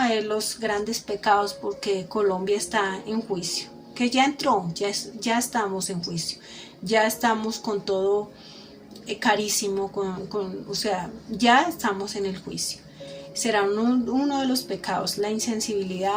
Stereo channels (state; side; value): identical; both; correlation 1.00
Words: de los grandes pecados, porque Colombia está en juicio, que ya entró, ya estamos en juicio, ya estamos con todo carísimo, o sea, ya estamos en el juicio. Será uno de los pecados, la